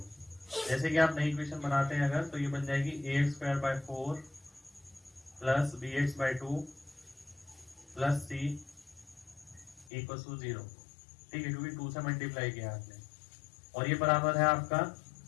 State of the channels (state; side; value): drops out; right; at 9.9 s